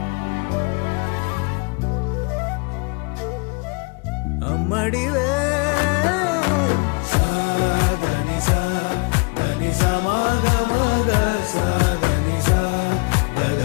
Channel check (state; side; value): quieter; right; 31.8 dB